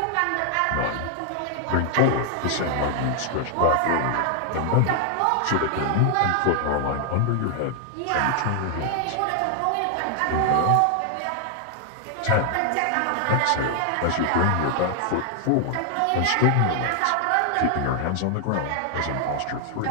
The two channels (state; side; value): different; both; correlation 0.00